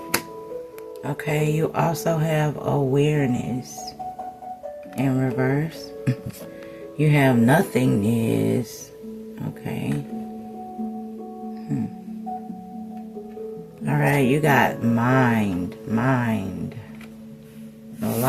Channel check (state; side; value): identical; both; correlation 1.00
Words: Okay, you also have awareness in reverse. You have nothingness. Okay. Alright, you got mind. A